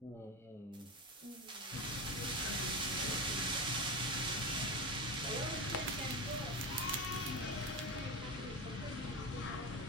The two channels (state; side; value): normal; both; correlation 0.20